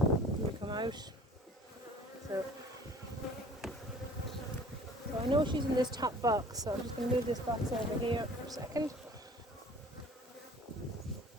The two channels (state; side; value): normal; both; correlation 0.50